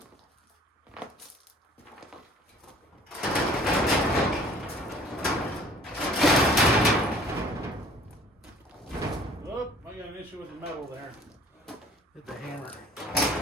Oh, I got an issue with the metal there. Hit the hammer.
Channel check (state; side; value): normal; both; correlation 0.52